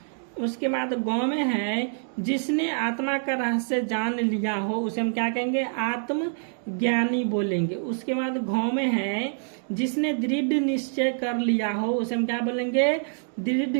उसके बाद गौ में है जिसने आत्मा का रहस्य जान लिया हो, उसे हम क्या कहेंगे, आत्मज्ञानी बोलेंगे। उसके बाद घौ में है जिसने दृढ़ निश्चय कर लिया हो, उसे हम क्या बोलेंगे,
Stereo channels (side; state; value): left; silent; digital silence